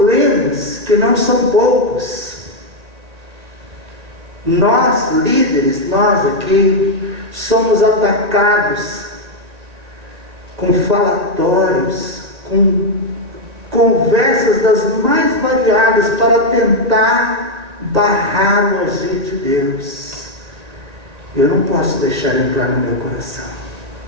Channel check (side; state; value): left; late; 1.8 ms